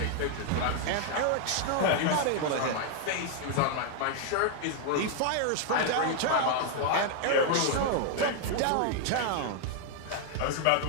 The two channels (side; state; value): both; different; correlation 0.00